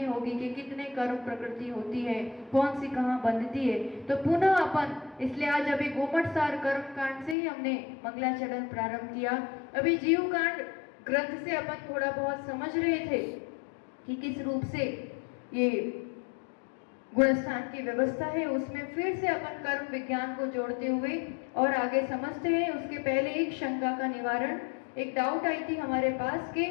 होगी कि कितने कर्म प्रकृति होती है, कौन सी कहाँ बंधती है। तो पुनः अपन, इसलिए आज अभी गोमट सार कर्म कांड से ही हमने मंगलाचरण प्रारंभ किया। अभी जीव कांड ग्रंथ से अपन थोड़ा बहुत समझ रहे थे कि किस रूप से ये गुणस्थान की व्यवस्था है। उसमें फिर से अपन कर्म विज्ञान को जोड़ते हुए और आगे समझते हैं। उसके पहले एक शंका का निवारण, एक डाउट आई थी हमारे पास कि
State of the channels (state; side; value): drops out; right; at 7.4 s